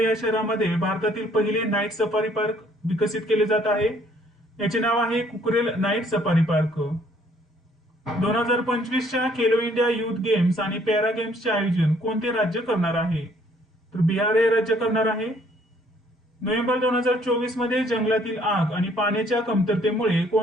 शहरामध्ये भारतातील पहिले नाईट सफारी पार्क विकसित केले जात आहे. याचे नाव आहे कुकरेल नाईट सफारी पार्क. 2025च्या खेलो इंडिया युथ गेम्स आणि पॅरा गेम्सचे आयोजन कोणते राज्य करणार आहे? तर बिहार हे राज्य करणार आहे. नोव्हेंबर 2024 मध्ये जंगलातील आग आणि पाण्याच्या कमतरतेमुळे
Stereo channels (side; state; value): both; normal; correlation 0.62